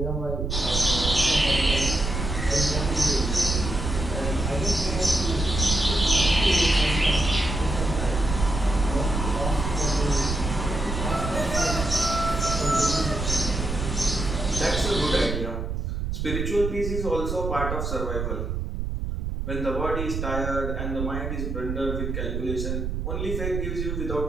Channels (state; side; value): noise; right; rumble, 3 dB below the sound